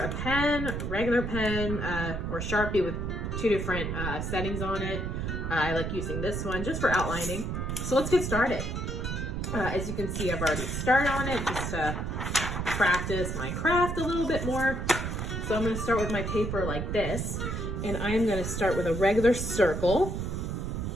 pen, regular pen, or Sharpie with 2 different settings on it. I like using this one just for outlining. So let's get started. As you can see, I've already started on it just to practice my craft a little bit more. So I'm going to start with my paper like this, and I'm going to start with a regular circle.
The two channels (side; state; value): right; noise; rumble, 3 dB below the sound